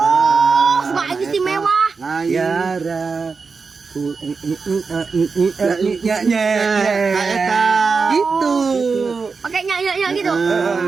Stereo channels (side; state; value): left; quieter; 4.8 dB